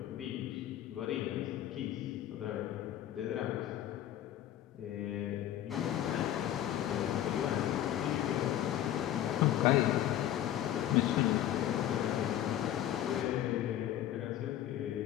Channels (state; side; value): quieter; right; 12.0 dB